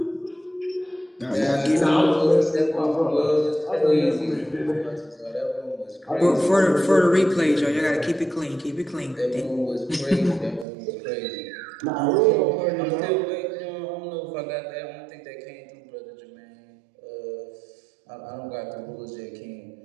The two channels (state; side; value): drops out; left; at 10.7 s